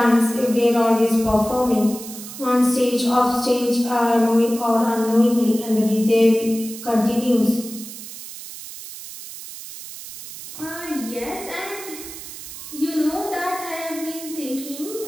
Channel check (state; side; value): noise; right; hiss, 12 dB below the sound